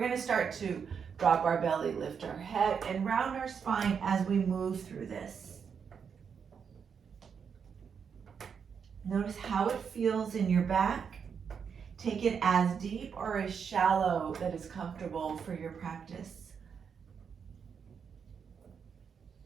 start to drop our belly, lift our head, and round our spine as we move through this. Notice how it feels in your back. Take it as deep or as shallow that is comfortable for your practice.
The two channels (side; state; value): left; quieter; 6.7 dB